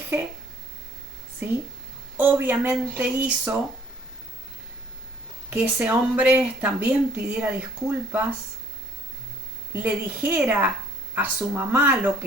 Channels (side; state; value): both; normal; correlation 0.59